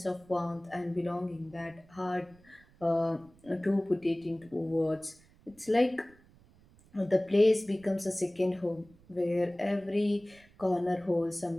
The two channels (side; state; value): right; noise; rumble, 28 dB below the sound